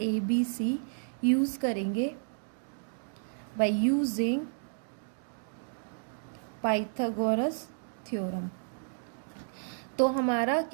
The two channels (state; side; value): silent; left; digital silence